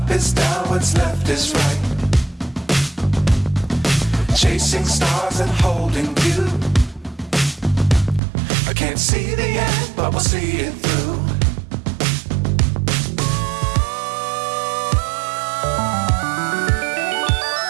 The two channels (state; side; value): drops out; left; at 8.2 s